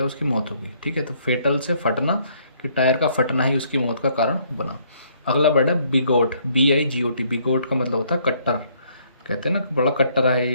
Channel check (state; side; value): inverted; both; correlation -0.66